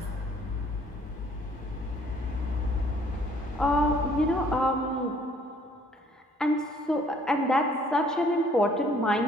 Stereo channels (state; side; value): normal; both; correlation 0.60